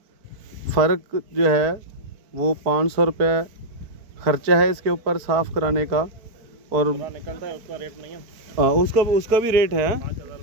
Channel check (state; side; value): late; left; 4.5 ms